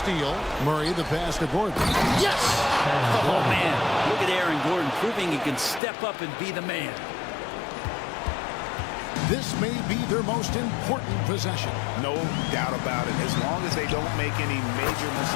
Murray the pass to Gordon. Yes! Oh, man. Look at Aaron Gordon proving he can step up and be the man. This may be their most important possession. No doubt about it. As long as they don't make any major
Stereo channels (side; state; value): right; drops out; at 5.8 s